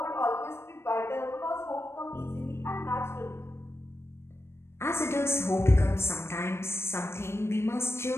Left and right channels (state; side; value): late; right; 0.12 ms